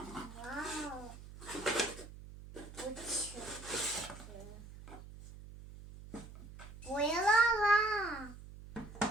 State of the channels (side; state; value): right; noise; hum, 15 dB below the sound